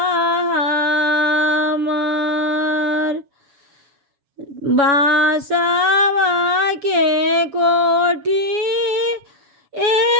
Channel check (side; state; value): left; late; 7.1 ms